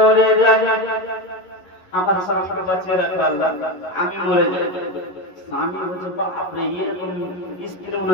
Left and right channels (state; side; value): late; right; 11 ms